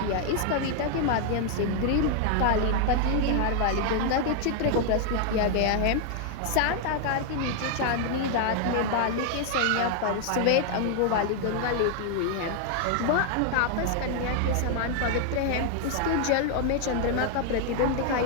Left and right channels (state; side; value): different; both; correlation 0.00